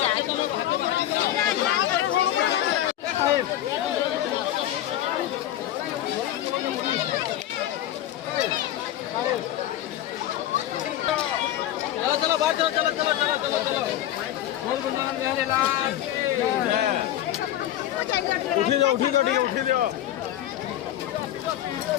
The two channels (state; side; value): quieter; right; 12.6 dB